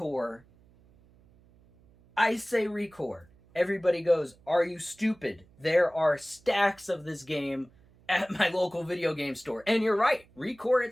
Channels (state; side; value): noise; right; hum, 29 dB below the sound